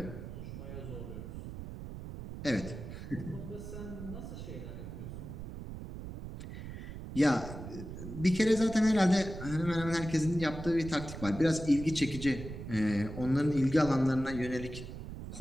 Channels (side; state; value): right; noise; rumble, 9 dB below the sound